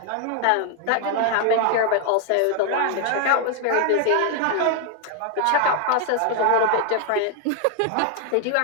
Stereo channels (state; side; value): different; both; correlation 0.00